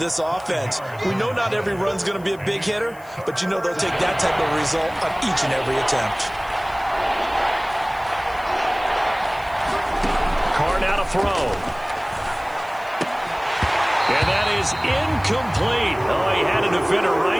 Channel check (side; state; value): left; noise; hiss, 25 dB below the sound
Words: offense. We know not every run's going to be a big hitter, but you know they'll take that type of result on each and every attempt. Carr now to throw. And that is incomplete. Oh, he had a defender